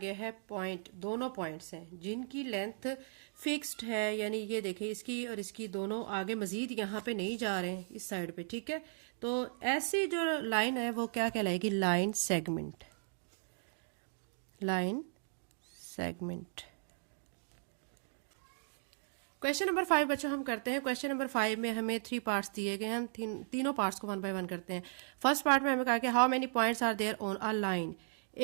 है पॉइंट, दोनों पॉइंट्स हैं जिनकी लेंथ फिक्स्ड है, यानी ये देखिए इसकी और इसकी दोनों आगे मजीद यहाँ पे नहीं जा रहे हैं इस साइड पे, ठीक है। तो ऐसी जो लाइन है वो क्या कहलाएगी, line segment, line segment. Question number 5 बच्चों हम करते हैं। क्वेश्चन नंबर 5 में हमें 3 पार्ट्स दिए गए, हम तीनों पार्ट्स को 1 बाय 1 करते हैं। फर्स्ट पार्ट में हमें कहा कि how many points are there on a line,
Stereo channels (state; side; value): silent; left; digital silence